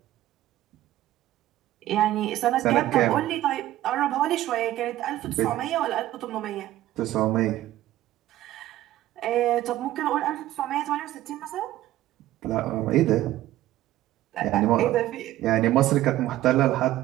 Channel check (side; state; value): left; quieter; 14.5 dB